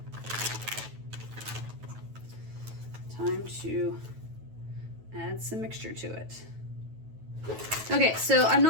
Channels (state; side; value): late; left; 9.2 ms